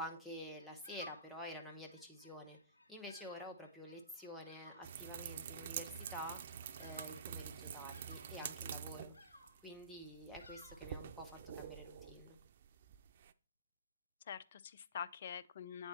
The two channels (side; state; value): both; inverted; correlation -0.37